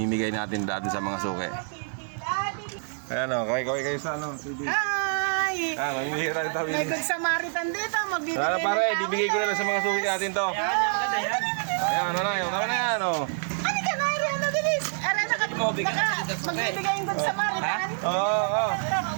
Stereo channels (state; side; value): silent; left; digital silence